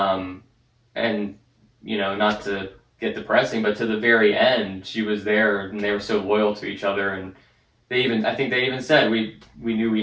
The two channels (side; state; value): both; identical; correlation 1.00